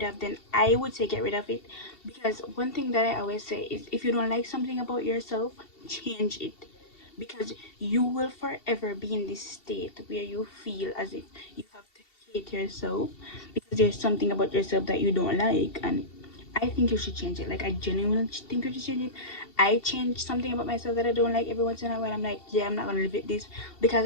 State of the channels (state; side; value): late; right; 2.7 ms